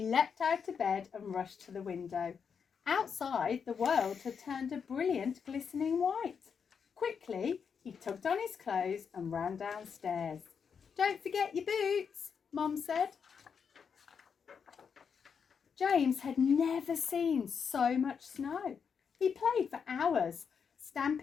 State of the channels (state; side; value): quieter; right; 6.5 dB